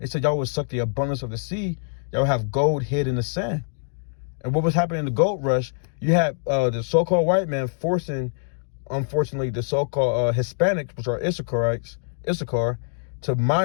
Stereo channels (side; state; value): right; silent; digital silence